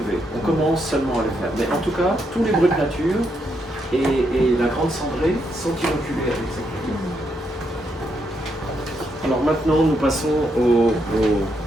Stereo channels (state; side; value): normal; both; correlation 0.79